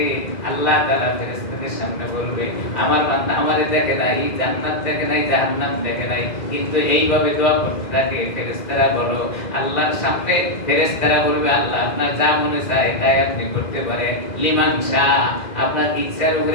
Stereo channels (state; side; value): late; right; 2.0 ms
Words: আল্লাহ তাআলা ফেরেশতাদের সামনে বলবে, আমার বান্দা আমারে দেখে নাই, জান্নাত দেখে নাই, জাহান্নাম দেখে নাই, কিন্তু এইভাবে দোয়া করতে থাকে। ফেরেশতারা বলো, আল্লাহর সামনে ফেরেশতারা বলবে, আল্লাহ আপনার যা মনে চায় তাই আপনি করতে পারেন, লিমান শাহ, আপনার ইচ্ছার